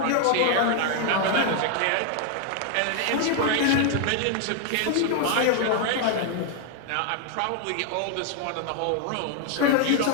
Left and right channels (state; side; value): different; both; correlation 0.00